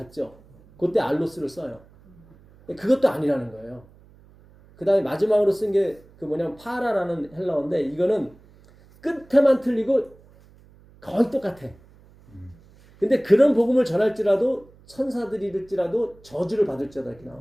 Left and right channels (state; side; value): noise; right; hum, 26 dB below the sound